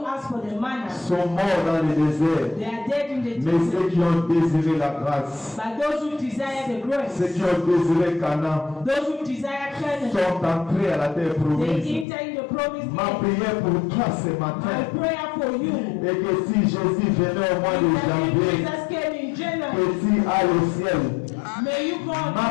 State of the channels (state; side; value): drops out; right; at 12.1 s